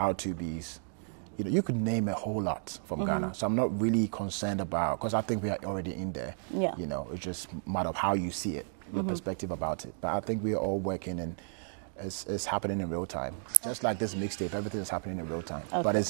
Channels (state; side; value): silent; left; digital silence